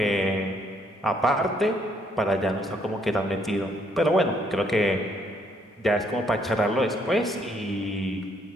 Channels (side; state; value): both; normal; correlation 0.69